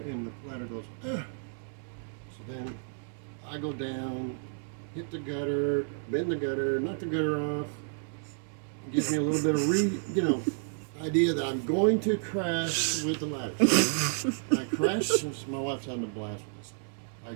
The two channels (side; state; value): left; silent; digital silence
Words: and the ladder goes, ugh. So then I go down, hit the gutter, bend the gutter, knock the gutter off. It gives me a little bit of idea that I'm going to crash with the ladder. I crashed. My wife's having a blast with this. I